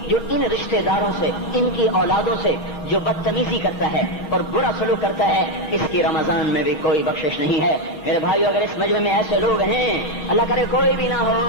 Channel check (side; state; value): right; late; 6.2 ms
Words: جو ان رشتے داروں سے، ان کی اولادوں سے جو بدتمیزی کرتا ہے اور برا سلوک کرتا ہے، اس کی رمضان میں بھی کوئی بخشش نہیں ہے۔ میرے بھائیو، اگر اس مجمع میں ایسے لوگ ہیں، اللہ کرے کوئی بھی نہ